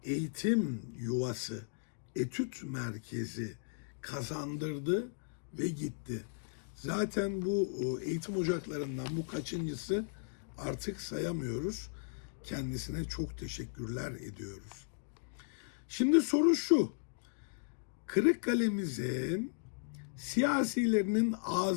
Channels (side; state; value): right; silent; digital silence